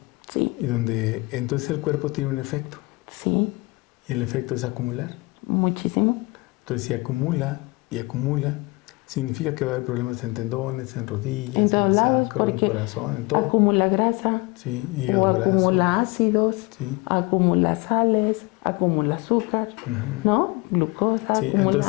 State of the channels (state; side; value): quieter; right; 25.2 dB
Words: Sí. Y donde entonces el cuerpo tiene un efecto. Sí. y el efecto es acumular. Muchísimo. Entonces, si acumula y acumula, significa que va a haber problemas en tendones, en rodillas, En todos en el lados, sacro, en el porque corazón, en todo. acumula grasa, Sí, o hígado graso. acumula ácidos, Sí. acumula sales, acumula azúcar, ¿no? Glucosa, Sí,